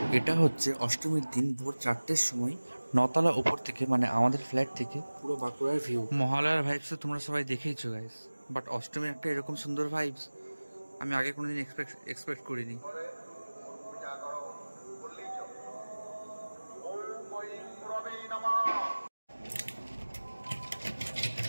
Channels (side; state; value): both; inverted; correlation -1.00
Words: এটা হচ্ছে অষ্টমীর দিন ভোর 4টের সময় নতলা ওপর থেকে, মানে আমাদের ফ্ল্যাট থেকে পুরো বাঁকুড়ার ভিউ। মহালয়ার ভাইবস তো তোমরা সবাই দেখেইছো গাইস, বাট অষ্টমীর একটা এরকম সুন্দর ভাইবস আমি আগে কোনোদিন এক্সপেক্ট করিনি।